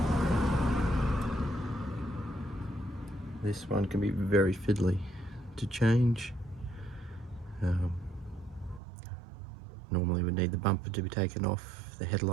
This one can be very fiddly to change. Normally we need the bumper to be taken off, the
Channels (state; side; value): drops out; left; at 8.8 s